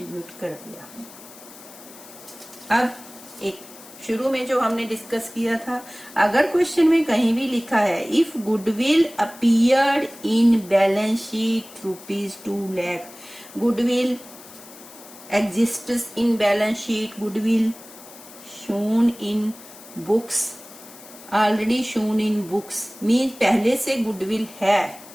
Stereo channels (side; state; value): left; noise; hiss, 19 dB below the sound